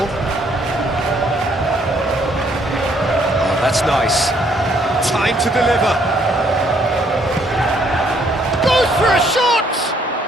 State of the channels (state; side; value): normal; both; correlation 0.67